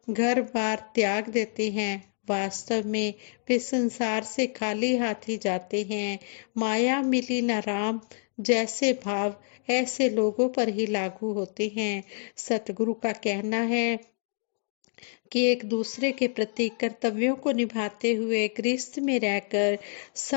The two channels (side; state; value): right; silent; 58 dB below the other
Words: घर बार त्याग देते हैं, वास्तव में वे संसार से खाली हाथ ही जाते हैं। माया मिली न राम जैसे भाव ऐसे लोगों पर ही लागू होते हैं। सतगुरु का कहना है कि एक दूसरे के प्रति कर्तव्यों को निभाते हुए गृहस्थ में रहकर